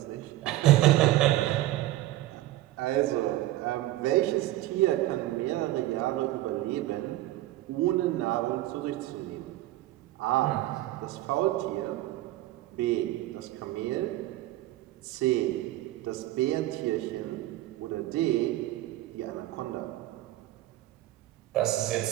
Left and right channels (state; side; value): quieter; left; 15.7 dB